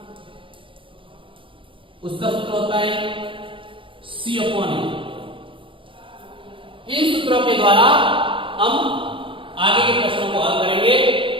उसका सूत्र होता है C अपॉन ए। इन सूत्रों के द्वारा हम आगे के प्रश्नों को हल करेंगे।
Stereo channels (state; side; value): late; left; 0.25 ms